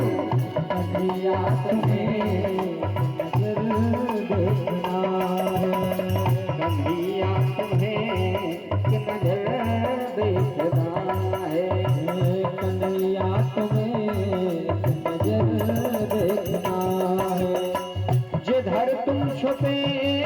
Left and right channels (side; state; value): both; identical; correlation 1.00